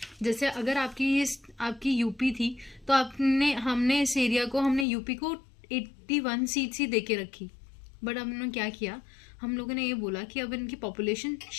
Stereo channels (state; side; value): drops out; right; at 4.9 s